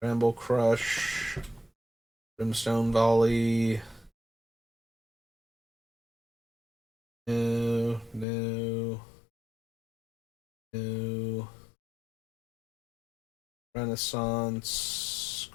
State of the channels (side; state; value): right; drops out; at 8.2 s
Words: Bramble Crush. Brimstone Volley. No. No. Renaissance.